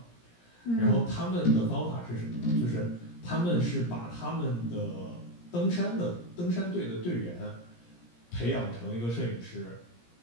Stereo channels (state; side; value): late; right; 17 ms